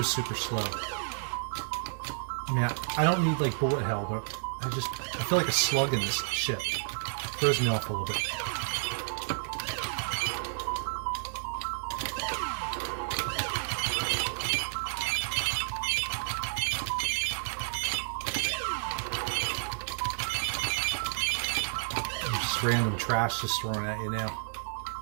super slow. I mean, I don't need like bullet hell, but I feel like a slug in this ship. Throws me off a little bit. Random trash just thrown at you now.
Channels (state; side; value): silent; left; digital silence